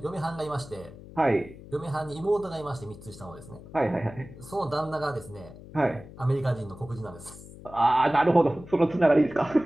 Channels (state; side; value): noise; left; hum, 17 dB below the sound